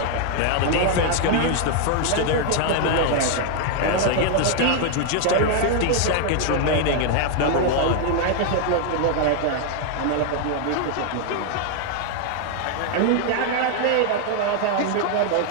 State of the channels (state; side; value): different; both; correlation 0.00